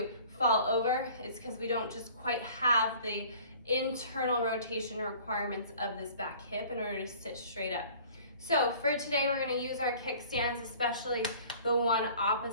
fall over, it's because we don't just quite have the internal rotation requirements of this back hip in order to sit straight up. So for today, we're gonna use our kickstands, especially the one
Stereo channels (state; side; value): inverted; both; correlation -0.49